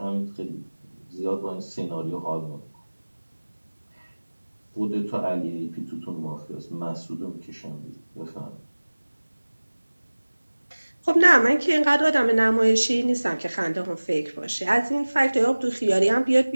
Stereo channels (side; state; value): both; inverted; correlation -1.00